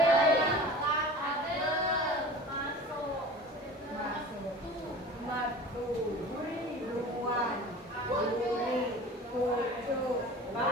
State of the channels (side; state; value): both; normal; correlation 0.39